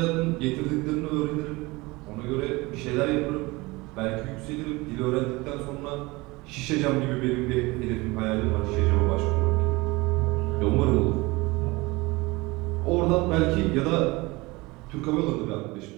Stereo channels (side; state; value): left; quieter; 22.9 dB